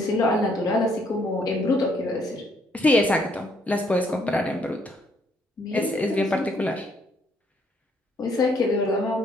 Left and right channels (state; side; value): normal; both; correlation 0.68